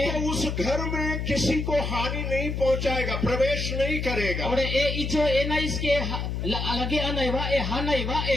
तो उस घर में किसी को हानि नहीं पहुंचाएगा, प्रवेश नहीं करेगा। और ए इजो एना इसके लगे आना वा ए हाना वा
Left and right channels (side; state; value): left; noise; hum, 3 dB below the sound